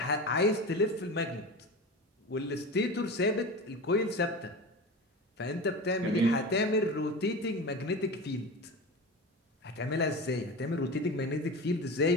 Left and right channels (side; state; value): both; normal; correlation 0.29